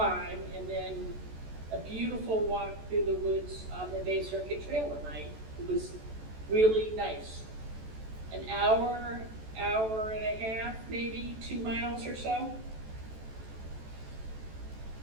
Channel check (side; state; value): left; late; 14 ms